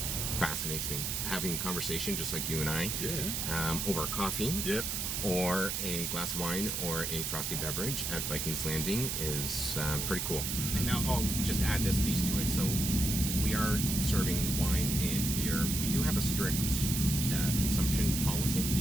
fascinates me. Having a conversation just like you and I, over coffee, Yep. or a glass of wine, or a frosty beverage at Vikings Landing is pretty cool. And now I'll just add this piece to it. So we are serving wine and beer. We do have a strict consumption policy.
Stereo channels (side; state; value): right; noise; hiss, 1 dB below the sound